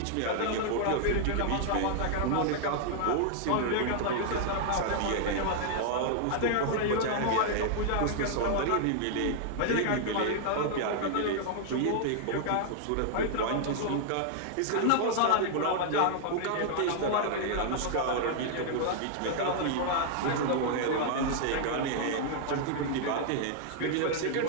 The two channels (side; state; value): both; different; correlation -0.01